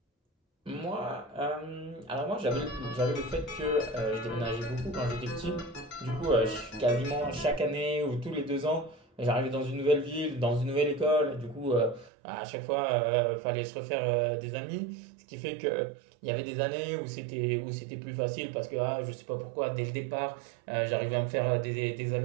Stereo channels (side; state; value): left; drops out; at 12.1 s